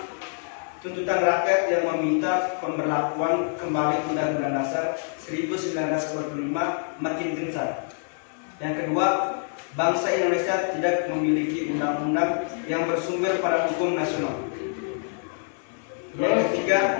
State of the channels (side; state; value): right; silent; 61 dB below the other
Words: tuntutan rakyat yang meminta pemberlakuan kembali Undang-Undang Dasar 1945 makin gencar. Yang kedua, bangsa Indonesia tidak memiliki undang-undang yang bersumber pada hukum nasional. Yang